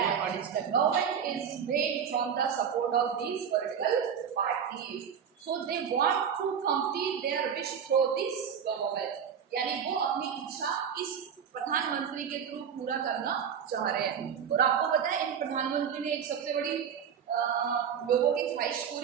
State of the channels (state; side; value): quieter; left; 7.7 dB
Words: Government is made from the support of these political parties. So they want to complete their wish through this government. यानी वो अपनी इच्छा इस प्रधानमंत्री के थ्रू पूरा करना चाह रहे हैं। और आपको पता है इन प्रधानमंत्री ने एक सबसे बड़ी लोगों की ख्वाहिश